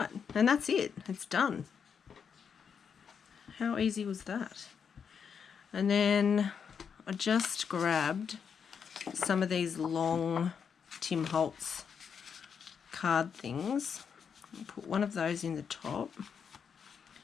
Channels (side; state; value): right; quieter; 6.8 dB